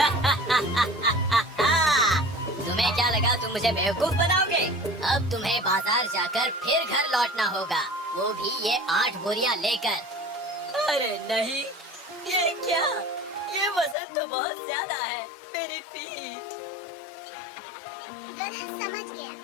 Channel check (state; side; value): drops out; right; at 14.0 s